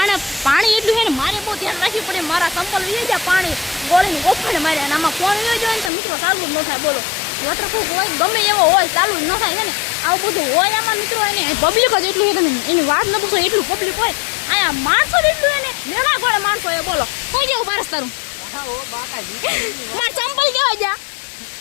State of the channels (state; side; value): drops out; right; at 5.9 s